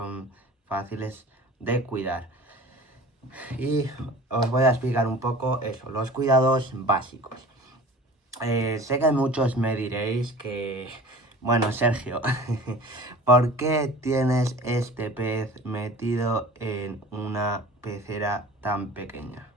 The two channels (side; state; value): both; normal; correlation 0.42